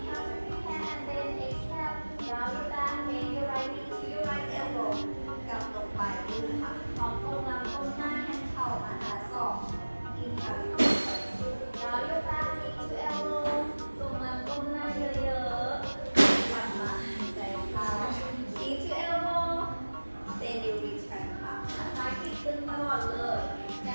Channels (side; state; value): both; inverted; correlation -1.00